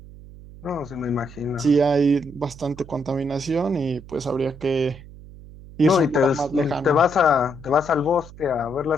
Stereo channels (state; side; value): noise; right; hum, 18 dB below the sound